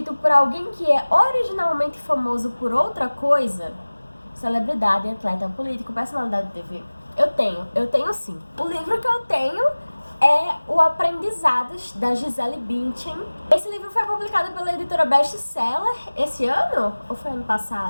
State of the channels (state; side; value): inverted; both; correlation -1.00